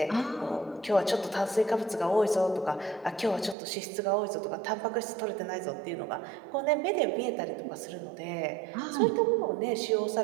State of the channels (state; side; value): drops out; left; at 3.6 s